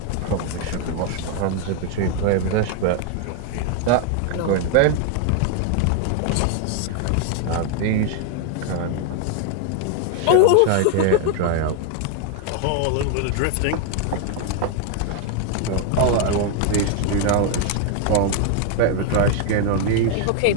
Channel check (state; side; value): different; both; correlation 0.01